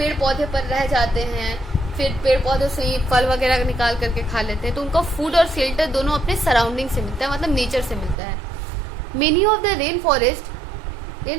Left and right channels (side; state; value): left; drops out; at 8.2 s